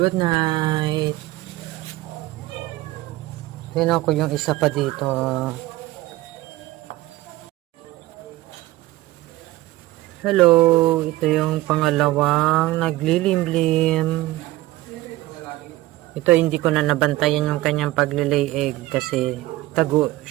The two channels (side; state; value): left; quieter; 17.7 dB